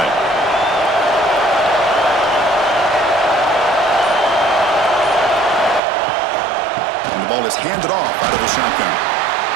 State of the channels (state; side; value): drops out; left; at 5.8 s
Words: ball is handed off out of the shotgun.